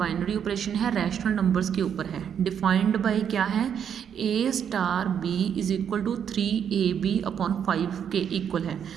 ऑपरेशन है, रैशनल नंबर्स के ऊपर है। डिफाइंड बाय क्या है? A star B is equal to 3ab upon 5 के इक्वल है।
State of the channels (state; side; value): quieter; left; 8.3 dB